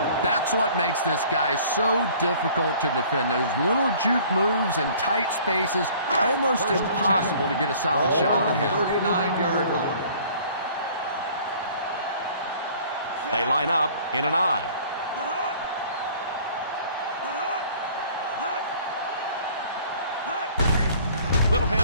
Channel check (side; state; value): both; inverted; correlation -0.52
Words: That's what makes this guy so difficult to defend. Those little juke moves in tight spaces, almost impossible to get a solid shot on him. 39-yard line. They line up in an I. Little